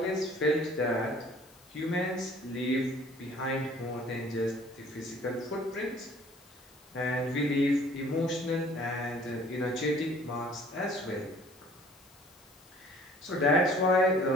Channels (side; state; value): left; noise; hiss, 27 dB below the sound